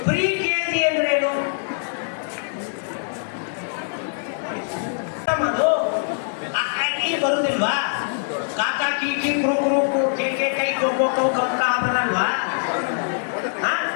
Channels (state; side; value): silent; right; digital silence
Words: ಪ್ರೀ KG ಅಂದ್ರೆ ಏನು? ಅದು